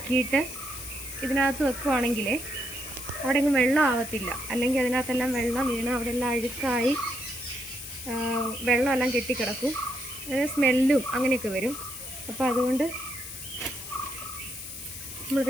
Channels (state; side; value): noise; left; hiss, 11 dB below the sound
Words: ഇതിനകത്ത് വെക്കുവാണെങ്കിൽ അവിടെ ഒന്നും വെള്ളം ആവത്തില്ല. അല്ലെങ്കിൽ അതിനകത്തെല്ലാം വെള്ളം വീണ് അവിടെ എല്ലാം അഴുക്കായി വെള്ളമെല്ലാം കെട്ടിക്കിടക്കും. സ്മെല്ലും അങ്ങനെയൊക്കെ വരും. അപ്പോൾ അതുകൊണ്ട്